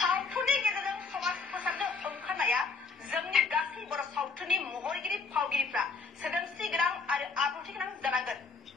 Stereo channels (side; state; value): right; quieter; 4.6 dB